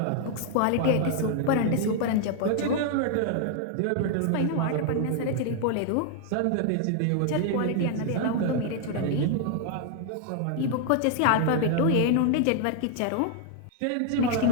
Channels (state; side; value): different; both; correlation 0.00